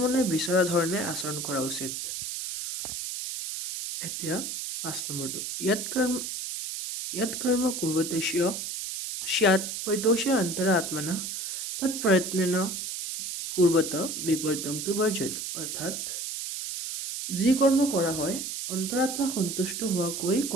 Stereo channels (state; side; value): noise; right; hiss, 5 dB below the sound